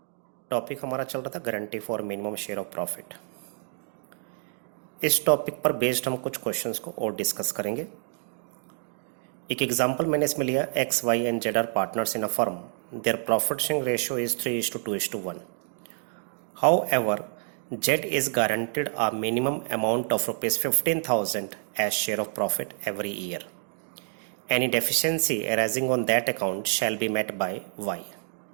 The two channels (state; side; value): silent; left; 59 dB below the other